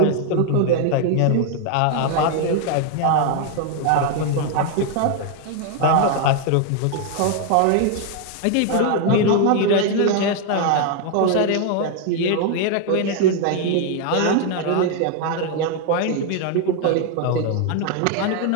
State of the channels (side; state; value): both; different; correlation 0.00